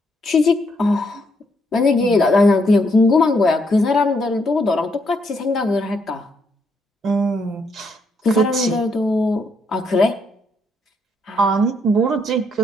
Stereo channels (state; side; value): normal; both; correlation 0.74